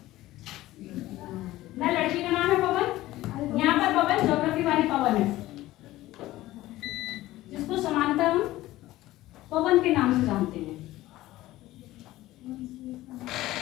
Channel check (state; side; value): quieter; right; 16.4 dB